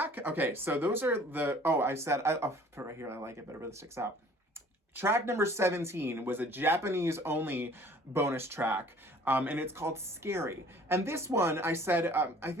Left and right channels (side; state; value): both; normal; correlation 0.52